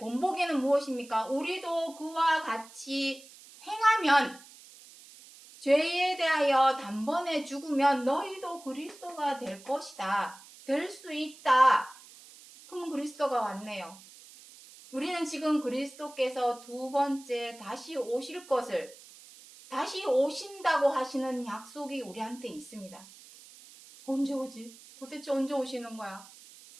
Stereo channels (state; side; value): noise; right; hiss, 20 dB below the sound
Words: 무엇입니까? 우리도 그와 같이 행하면 죄에 대하여 단번에 죽으면 너희도 그리스도가 될 것이다. 될 수 있다. 그럼 그리스도가 왔네요. 우리는 지금 그리스도께서 두 번째 다시 오실 것을, 다시 오신다고 하시는 약속이 우리한테 있습니다. 언제 오지? 도대체 언제 오시는 거야?